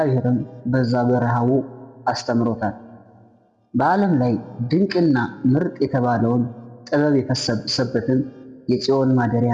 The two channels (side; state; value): both; identical; correlation 1.00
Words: በዛ በረሃቡ አስተምሮታል። በዓለም ላይ ድንቅና ምርጥ የተባለውን ጥበብ የፈሰሰበትን የጽዮን